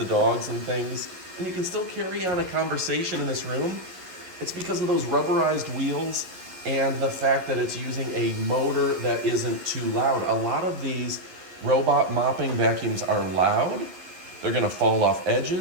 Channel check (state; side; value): late; left; 11 ms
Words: dogs and things. And you can still carry on a conversation in this room. It's because of those rubberized wheels and the fact that it's using a motor that isn't too loud. A lot of these robot mopping vacuums are loud. They're gonna fall off